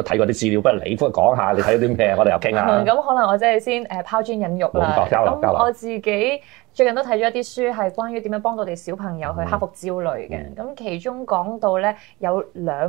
睇過啲資料，不如你講下你睇咗啲咩？我哋又傾下。咁可能我真係先拋磚引玉啦。咁我自己最近都睇咗一啲書，係關於點樣幫到我哋小朋友去克服焦慮嘅。咁其中講到咧有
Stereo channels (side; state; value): left; quieter; 22.7 dB